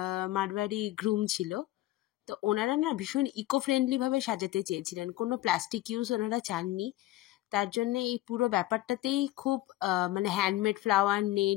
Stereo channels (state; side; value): quieter; right; 16.2 dB